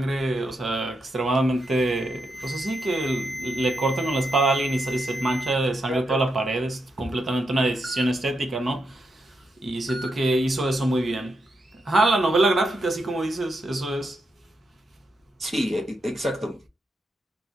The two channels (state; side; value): normal; both; correlation 0.83